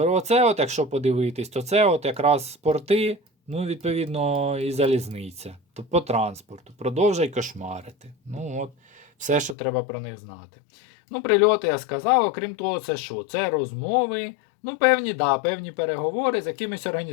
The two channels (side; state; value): right; drops out; at 9.6 s